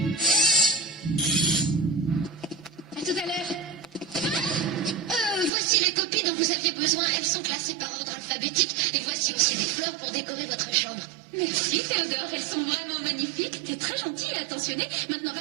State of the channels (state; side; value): drops out; left; at 5.5 s